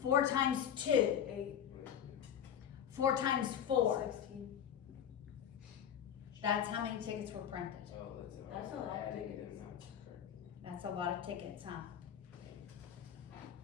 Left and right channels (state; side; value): quieter; right; 9.1 dB